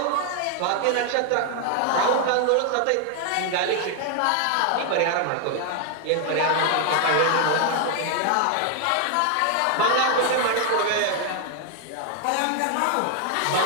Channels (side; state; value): both; different; correlation 0.00